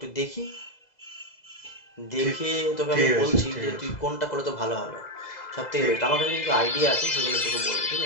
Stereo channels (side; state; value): right; late; 2.0 ms